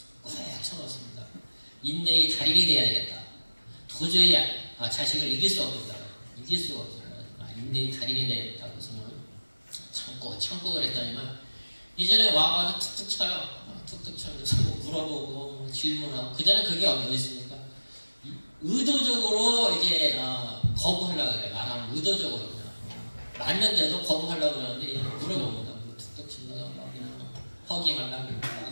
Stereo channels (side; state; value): both; inverted; correlation -1.00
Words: 꽉 쳐놓습니다. 인내의 달인이 돼야 되겠다. 도저히 자식을 이길 수 없겠다. 이길 수가 없어요. 인내의 달인이 되겠다고 해서는 참고 그랬다니만 이전에 와가지고 툭툭 쳐요. 툭툭 쳐서 물어보고 질문하고 그전에 그게 어디 있습니까? 의도적으로 이제 거부하려고 그래요. 말하면 의도적으로 그냥 맞는데도 거부하려고 그러는데 물어봅니다. 툭툭 친다가 막 그냥 허깅하려고